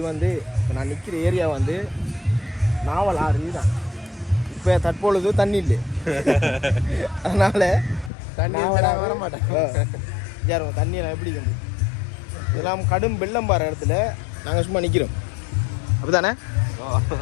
வந்து இப்போ நான் நிற்கிற ஏரியா வந்து நாவல் ஆறு தான். இப்போ தற்பொழுது தண்ணி இல்லை, அதனால் தண்ணி வர மாட்டேன். யாரும் தண்ணியெல்லாம் எப்படி வந்து இதெல்லாம் கடும் வெள்ளம் பாரு இடத்துல நாங்கள் சும்மா நிற்கிறோம். அப்படி தானே?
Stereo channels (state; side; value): drops out; right; at 8.1 s